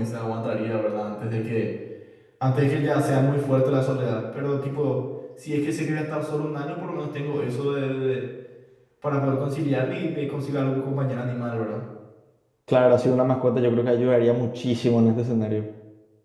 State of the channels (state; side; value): identical; both; correlation 1.00